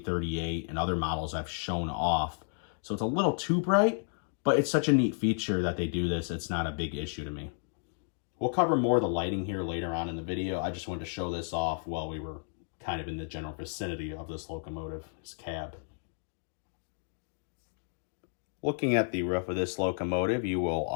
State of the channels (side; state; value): right; silent; 56 dB below the other